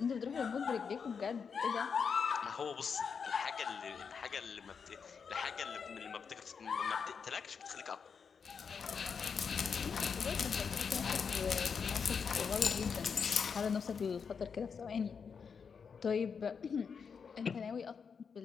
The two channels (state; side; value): quieter; right; 6.1 dB